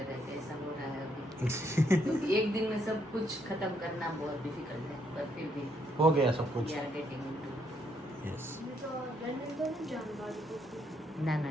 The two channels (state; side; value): normal; both; correlation 0.73